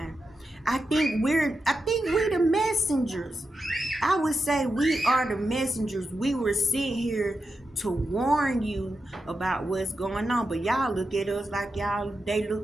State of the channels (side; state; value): both; normal; correlation 0.89